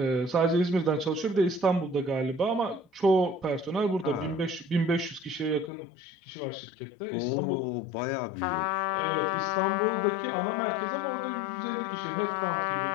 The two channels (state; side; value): drops out; right; at 5.7 s